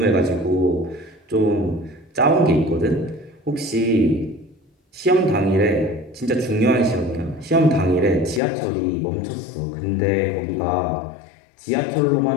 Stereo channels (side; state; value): right; drops out; at 8.4 s